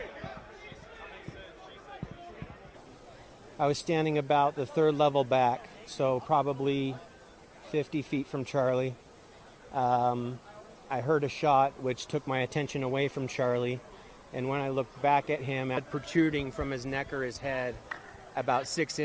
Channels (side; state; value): both; identical; correlation 1.00